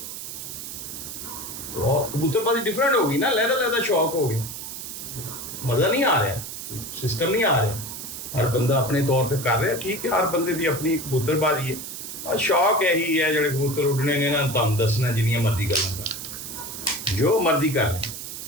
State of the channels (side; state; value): right; noise; hiss, 9 dB below the sound